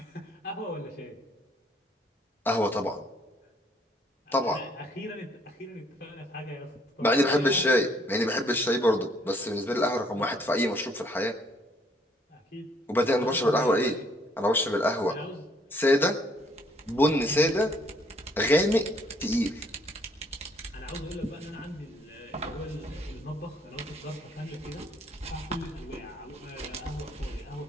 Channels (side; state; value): both; normal; correlation 0.64